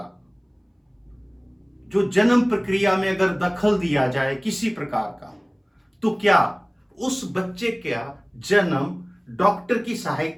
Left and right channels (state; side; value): identical; both; correlation 1.00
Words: जो जन्म प्रक्रिया में अगर दखल दिया जाए किसी प्रकार का, तो क्या उस बच्चे का जन्म डॉक्टर की